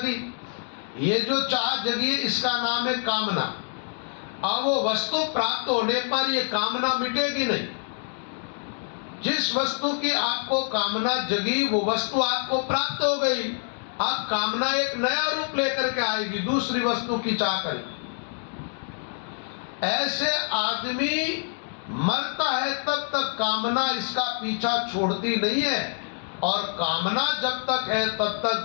ये जो चाह जगी इसका नाम है कामना। अब वो वस्तु प्राप्त होने पर ये कामना मिटेगी नहीं। जिस वस्तु की आपको कामना जगी, वो वस्तु आपको प्राप्त हो गई। अब कामना एक नया रूप लेकर के आएगी, दूसरी वस्तु की चाह करेगी। ऐसे आदमी मरता है तब तक कामना इसका पीछा छोड़ती नहीं है, और कामना जब तक है तब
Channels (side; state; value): right; silent; 55 dB below the other